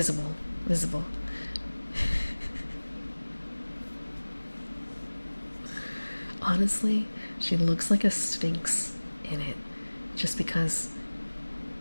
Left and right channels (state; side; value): inverted; both; correlation -1.00